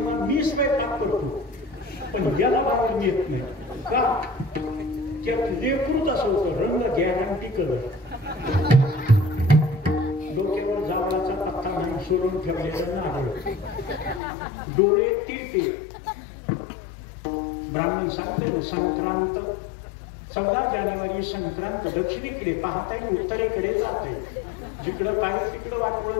मी स्वयंपाक करतो पण याला बाहेर नेत नाही का त्यात लेकरूच असं होतं रंग गॅरंटी करत डोक्यावर जावळाचा पत्ता नाही सोडून ठेवलेला नारळ डोळे तिरके. ब्राह्मण सांगते संक्रांत 14 जानेवारी संक्रांत दक्षिणेकडे पाहता येईल उत्तरेकडे जाते. जिकडं काय तिकडं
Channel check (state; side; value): drops out; right; at 14.2 s